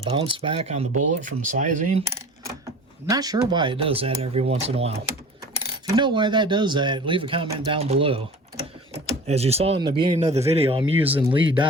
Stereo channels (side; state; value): both; normal; correlation 0.40